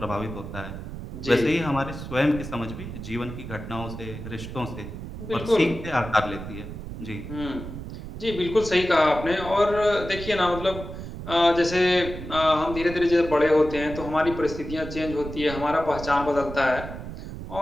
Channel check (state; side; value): noise; right; rumble, 9 dB below the sound